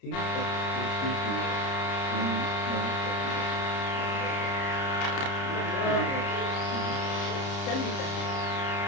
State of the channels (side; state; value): right; late; 30 ms